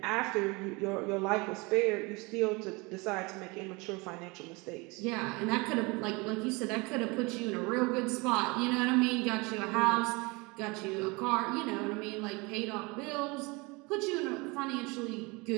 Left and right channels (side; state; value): left; quieter; 26.4 dB